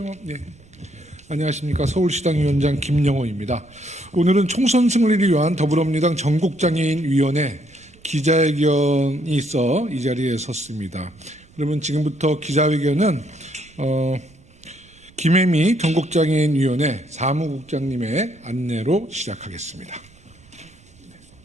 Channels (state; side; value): noise; right; rumble, 27 dB below the sound